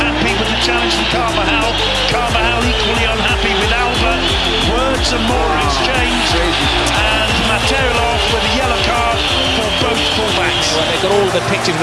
Happy with the challenge from Carvajal. Carvajal equally unhappy with Alba. Words and more exchanged. And Materilov with a yellow card for both fullbacks. Well, they've got all the pictures of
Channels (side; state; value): both; identical; correlation 1.00